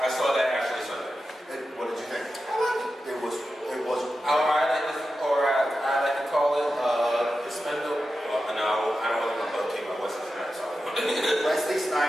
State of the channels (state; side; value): normal; both; correlation 0.91